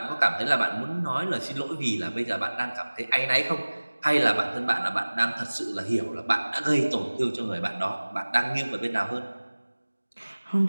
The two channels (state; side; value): inverted; both; correlation -1.00